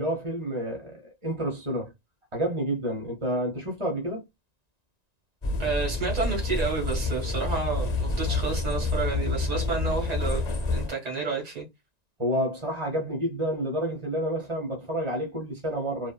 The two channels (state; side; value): late; left; 1.9 ms